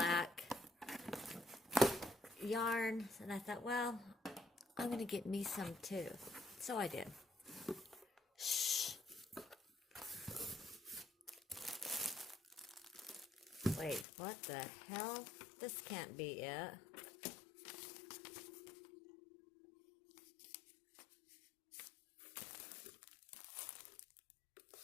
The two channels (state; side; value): drops out; right; at 14.1 s